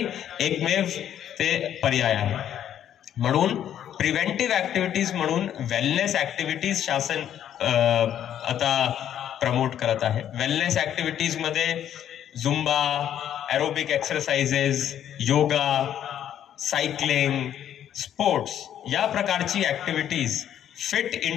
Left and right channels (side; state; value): right; quieter; 10.3 dB